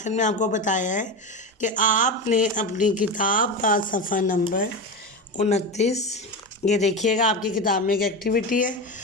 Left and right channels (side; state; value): both; normal; correlation 0.20